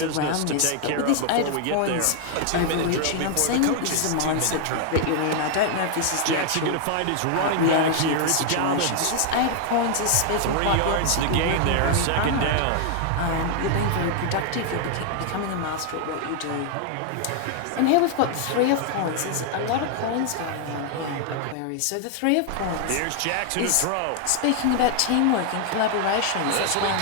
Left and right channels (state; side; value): different; both; correlation 0.00